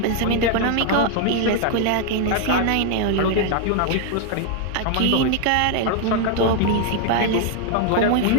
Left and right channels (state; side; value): different; both; correlation 0.00